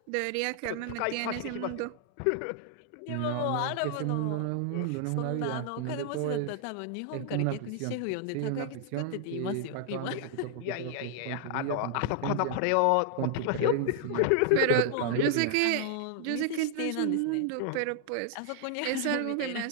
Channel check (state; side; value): different; both; correlation 0.00